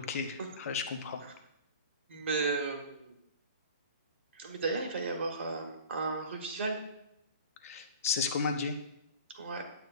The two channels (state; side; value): inverted; both; correlation -0.41